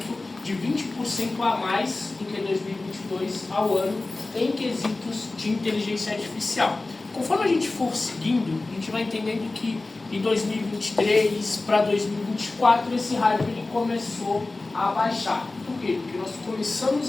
de 20% a mais do que 2022 ao ano em quesitos de inteligência artificial. Conforme a gente for seguindo, a gente vai entendendo que em 2023 para 2024 esse hype ele começou a baixar. Por quê? Porque nós começamos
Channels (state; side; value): quieter; right; 3.2 dB